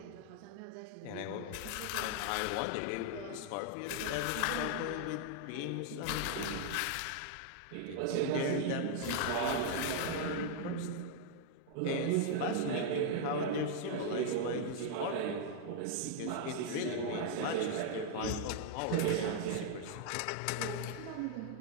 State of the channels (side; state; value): both; different; correlation 0.00